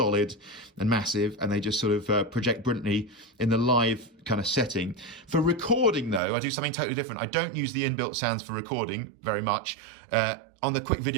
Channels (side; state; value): left; drops out; at 6.2 s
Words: and massive, and they just sort of project brilliantly in the live kind of setting. For recording, though, I do something totally different. I don't use the inbuilt sounds for recording very much. On the quick